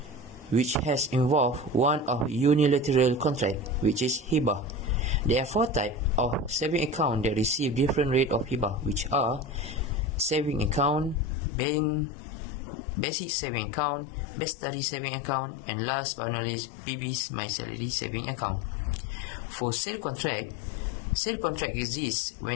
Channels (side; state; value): right; drops out; at 11.2 s